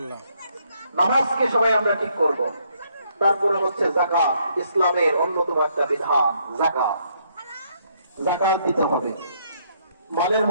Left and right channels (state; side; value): inverted; both; correlation -0.71